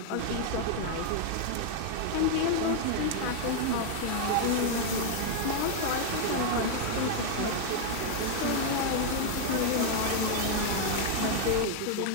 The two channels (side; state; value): both; different; correlation 0.00